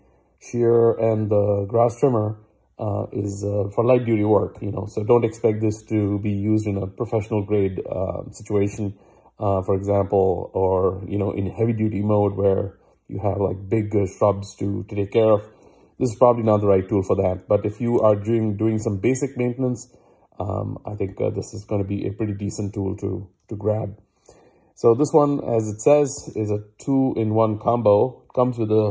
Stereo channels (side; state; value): both; identical; correlation 1.00